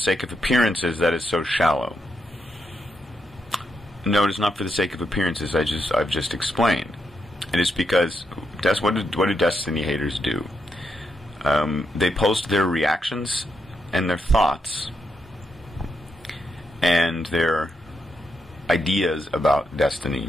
of appearances that is so shallow? No, it is not for the sake of appearances. I've just explained. It is because what do Destiny haters do? They post their reactions and their thoughts and their ideas about Destiny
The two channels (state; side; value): normal; both; correlation 0.82